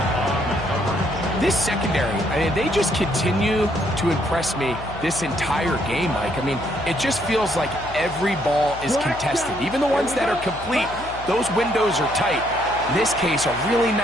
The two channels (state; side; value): noise; left; hum, 15 dB below the sound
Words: This secondary, I mean, they just continue to impress me this entire game, Mike. I mean, it just feels like every ball is contested. Even the ones that are complete, those windows are tight. In this case, a really